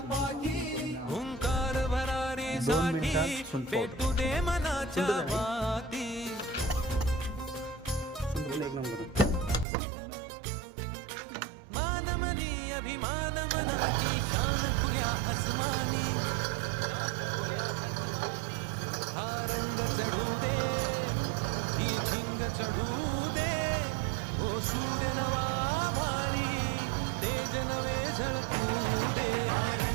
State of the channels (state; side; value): drops out; left; at 9.7 s